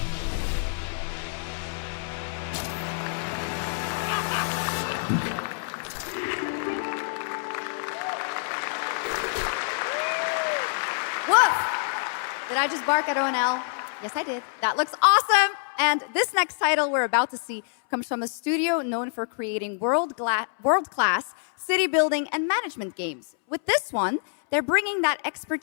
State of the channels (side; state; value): right; silent; 61 dB below the other